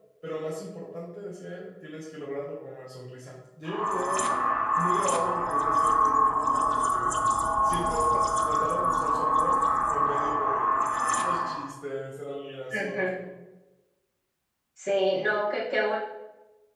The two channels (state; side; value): identical; both; correlation 1.00